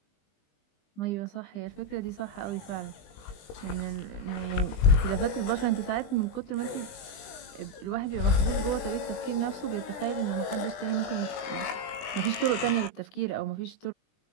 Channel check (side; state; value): right; late; 20 ms